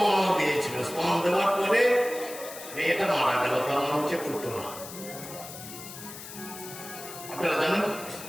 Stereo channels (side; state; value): left; noise; hiss, 13 dB below the sound